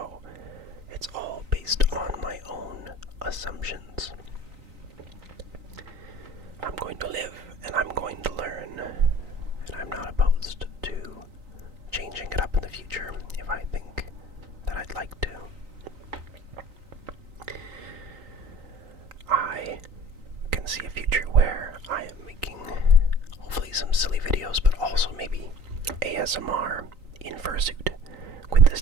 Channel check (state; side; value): late; left; 3.9 ms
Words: it's all based on my own assumptions. I'm going to live and I'm going to learn, and I'm not opposed to changing it up in the future if I think that I'd like to. I can see a future where I am making hopefully some silly videos, but also maybe ASMR in Fursuit, with the